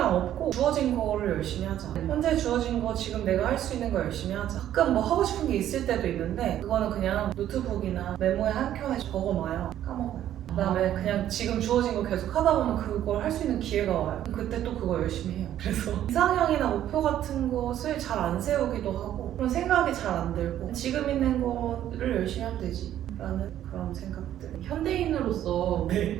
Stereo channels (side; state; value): left; quieter; 11.7 dB